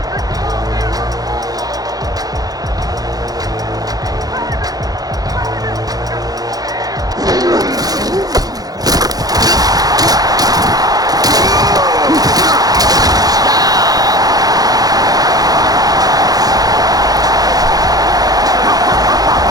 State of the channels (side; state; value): left; late; 0.18 ms